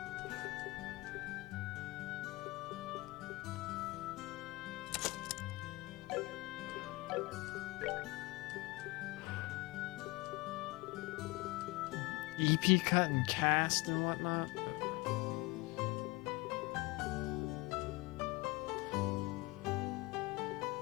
EP cut and cast and whatnot.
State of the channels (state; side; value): quieter; right; 22.6 dB